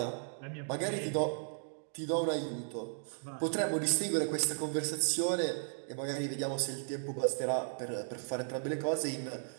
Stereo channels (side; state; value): left; silent; digital silence